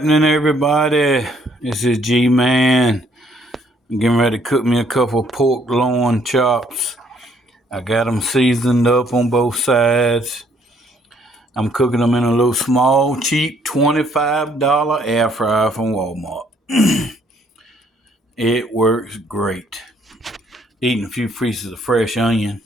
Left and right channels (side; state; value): both; normal; correlation 0.66